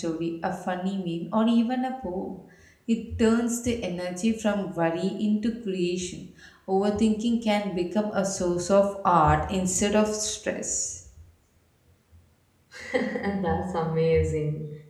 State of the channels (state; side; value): identical; both; correlation 1.00